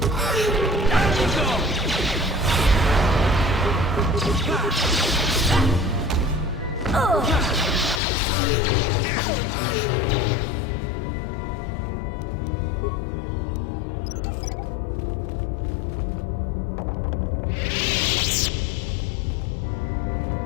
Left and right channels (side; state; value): right; drops out; at 8.0 s